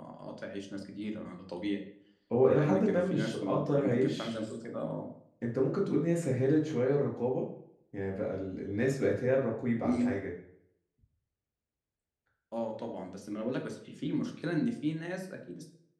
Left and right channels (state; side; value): identical; both; correlation 1.00